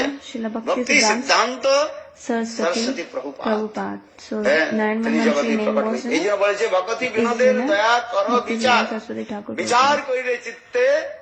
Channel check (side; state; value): both; identical; correlation 1.00